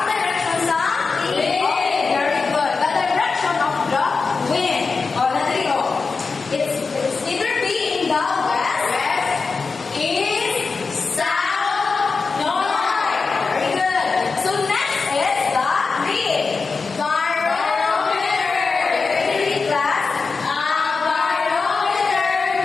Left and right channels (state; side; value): quieter; right; 4.5 dB